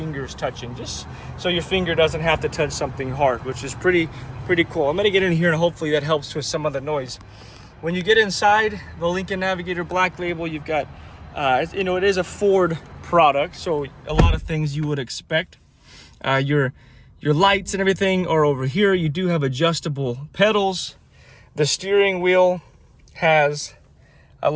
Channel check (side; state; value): both; identical; correlation 1.00